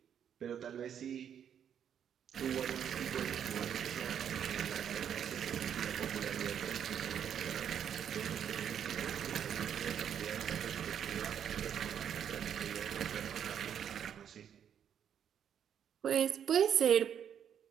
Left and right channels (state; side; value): quieter; left; 8.8 dB